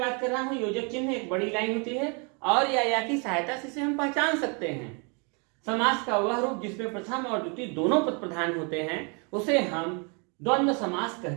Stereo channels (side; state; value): left; quieter; 34.4 dB